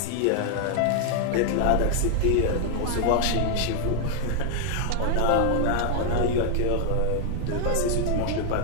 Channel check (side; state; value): both; different; correlation 0.00